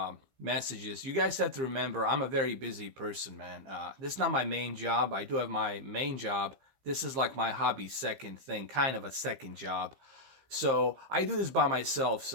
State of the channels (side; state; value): left; late; 15 ms